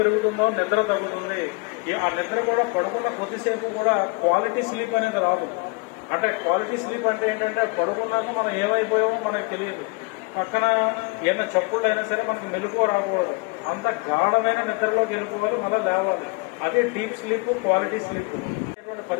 నిద్ర తగ్గుతుంది. ఆ నిద్ర కూడా పడుకున్న కొద్దిసేపు కూడా క్వాలిటీ స్లీప్ అనేది రాదు. అంటే క్వాలిటీ స్లీప్ అంటే ఏంటంటే పడుకున్నాక మనం ఏమైపోయామో మనకు తెలియదు. పక్కన ఏమైనా చప్పుళ్ళు అయినా సరే మనకు మెలకువ రాకూడదు. అంత గాఢమైన నిద్రలోకి వెళ్ళిపోవాలి, మళ్ళీ లేవాలి. అదే డీప్ స్లీప్, క్వాలిటీ స్లీప్.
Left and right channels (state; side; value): quieter; right; 28.7 dB